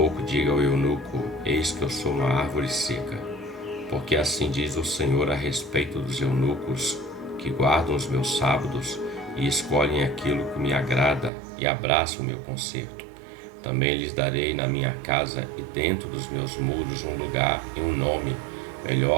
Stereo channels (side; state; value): left; drops out; at 11.3 s